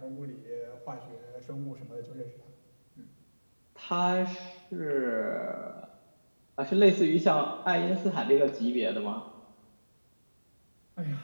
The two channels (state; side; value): inverted; both; correlation -1.00